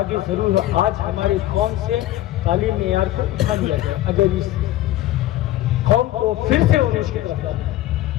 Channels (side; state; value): right; quieter; 14.5 dB